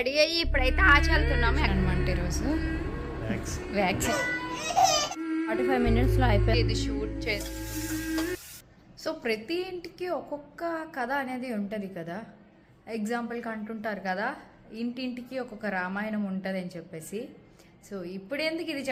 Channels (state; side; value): identical; both; correlation 1.00